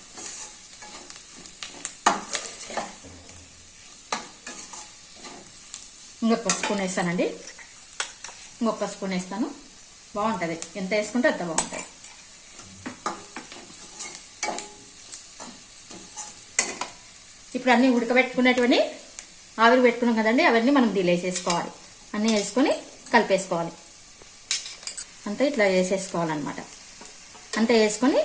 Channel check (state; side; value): identical; both; correlation 1.00